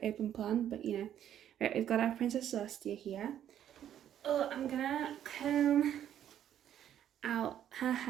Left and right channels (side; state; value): left; quieter; 10.5 dB